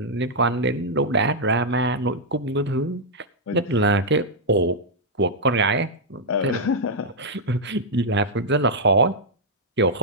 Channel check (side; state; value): both; normal; correlation -0.06